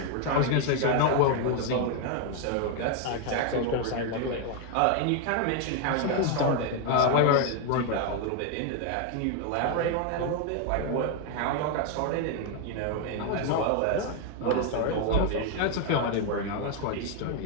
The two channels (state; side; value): different; both; correlation 0.01